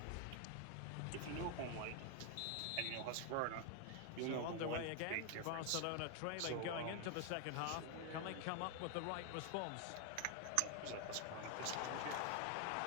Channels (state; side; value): different; both; correlation 0.00